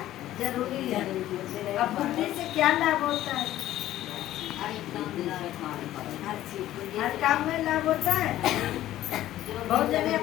जरूरी है। अब बुद्धि से क्या लाभ होता है? हर काम में लाभ होता है। बहुत जने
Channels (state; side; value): quieter; right; 13.8 dB